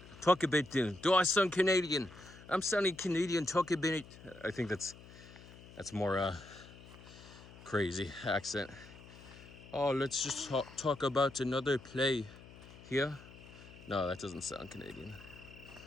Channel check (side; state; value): left; noise; hum, 19 dB below the sound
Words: Do I sound Canadian? I'm sounding Canadian. Talk a bit. I think that's more crazy accent. Oh, let's just talk about another play here. No, that doesn't sound Canadian.